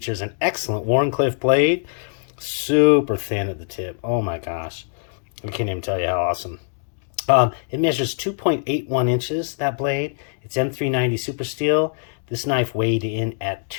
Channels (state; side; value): silent; right; digital silence